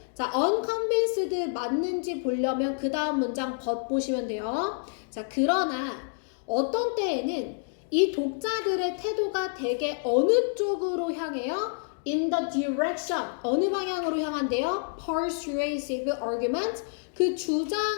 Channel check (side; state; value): right; silent; digital silence